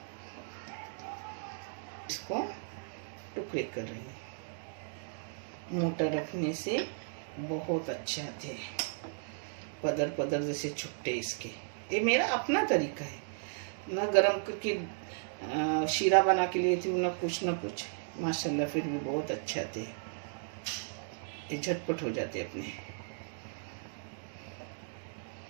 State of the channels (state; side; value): silent; left; digital silence